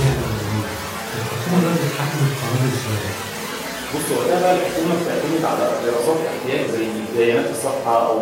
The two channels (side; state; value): both; identical; correlation 1.00